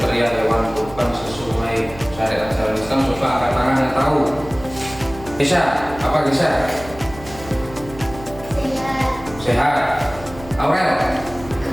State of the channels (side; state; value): right; noise; hum, 16 dB below the sound